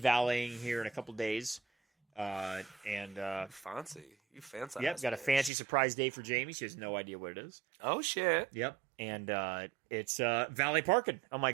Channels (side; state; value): left; drops out; at 5.5 s